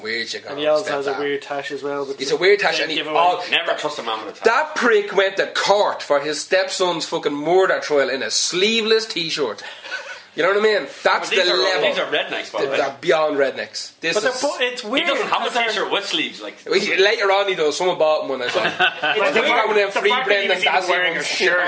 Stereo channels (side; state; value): both; identical; correlation 1.00